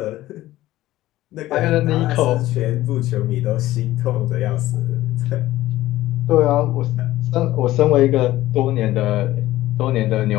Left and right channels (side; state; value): right; quieter; 15.7 dB